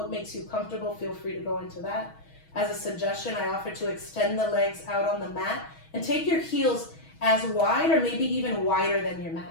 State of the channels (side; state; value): right; late; 6.2 ms